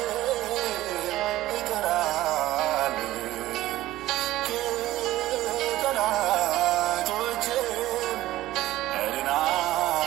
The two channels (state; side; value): quieter; left; 15.7 dB